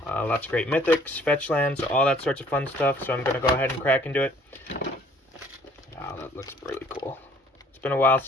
Lots of great mythics, fetch lands, all that sorts of fun stuff. So I'm going to go ahead and crack into it. Wow, that looks really cool. It's been a while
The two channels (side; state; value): both; normal; correlation 0.58